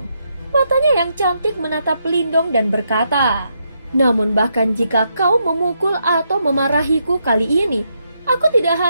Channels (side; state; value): both; inverted; correlation -0.79